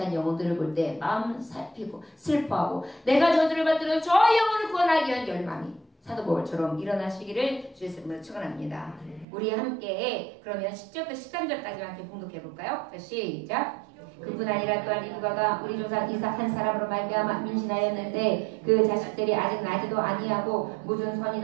영혼들을 볼 때 마음 살피고 슬퍼하고 내가 저주를 받들어 저 영혼을 구원하기 위한 열망이 사도 바울처럼 일어나시기를 주의 이름으로 축원합니다. 우리 함께 그러면 10절부터 13절까지 함께 봉독해 볼까요? 자, 시작. 그뿐 아니라 또한 리브가가 우리 조상 이삭 한 사람으로 말미암아 임신하였는데 그 자식들이 아직 나지도 아니하고 무슨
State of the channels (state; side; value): drops out; left; at 9.2 s